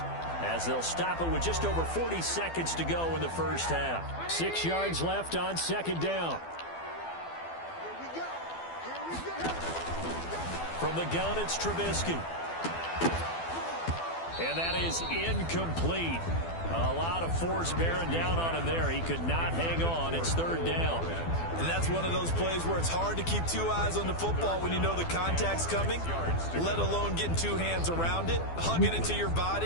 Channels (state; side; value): late; right; 12 ms